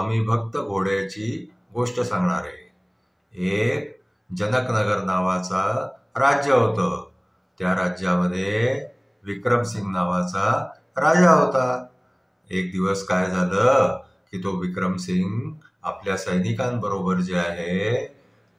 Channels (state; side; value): identical; both; correlation 1.00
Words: भक्त घोड्याची गोष्ट सांगणार आहे. एक जनकनगर नावाचा राज्य होतं. त्या राज्यामध्ये विक्रमसिंग नावाचा राजा होता. एक दिवस काय झालं की तो विक्रमसिंग आपल्या सैनिकांबरोबर जे आहे